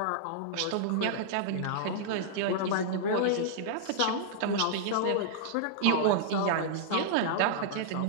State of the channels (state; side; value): different; both; correlation -0.02